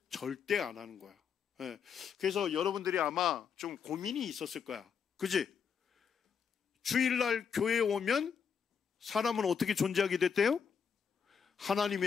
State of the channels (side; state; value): right; quieter; 6.8 dB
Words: 절대 안 하는 거야. 그래서 여러분들이 아마 좀 고민이 있었을 거야. 그지? 주일날 교회에 오면 사람은 어떻게 존재하게 됐대요? 하나님에